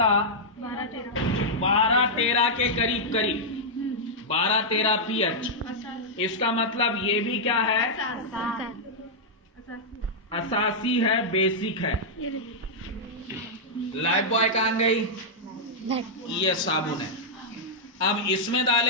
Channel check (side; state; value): both; normal; correlation -0.07